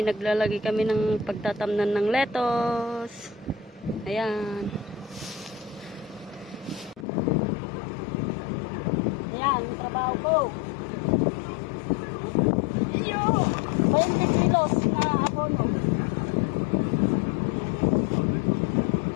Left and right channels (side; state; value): right; drops out; at 7.1 s